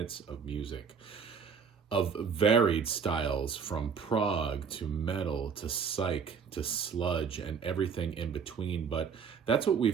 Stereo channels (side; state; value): left; quieter; 6.4 dB